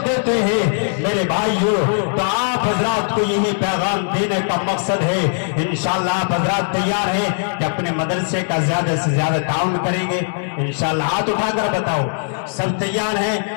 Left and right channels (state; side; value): silent; right; digital silence